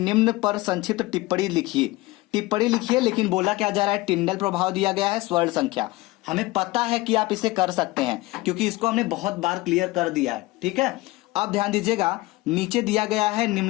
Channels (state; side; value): quieter; right; 20.2 dB